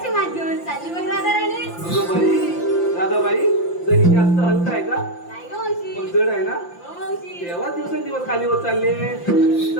मात घेऊन चालली बघ राधाराणी. तुझं बाई दादाबाई, दही जास्त हलका आहे का? नाही ग मावशी. पण जड आहे ना. हो मावशी. तेव्हा दिवसेंदिवस खाली होत चालले.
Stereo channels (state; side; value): late; right; 5.8 ms